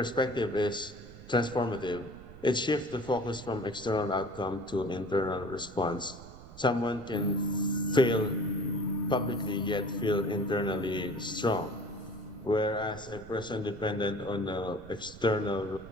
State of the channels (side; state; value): right; noise; rumble, 17 dB below the sound